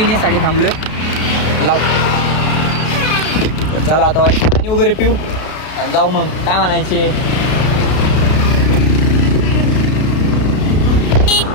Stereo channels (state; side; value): late; right; 32 ms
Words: थांबलोय. लाव. तर चला आता वाईस पाणी वगैरे पिऊ आणि जाऊ मग. काय म्हणायचे.